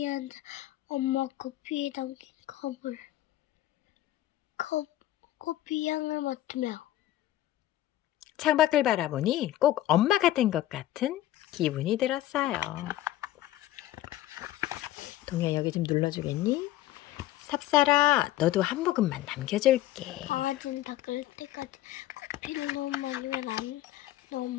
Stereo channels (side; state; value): right; quieter; 14.3 dB